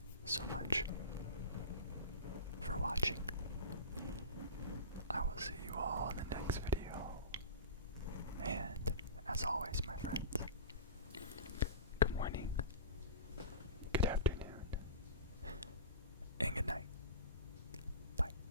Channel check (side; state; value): both; inverted; correlation -0.32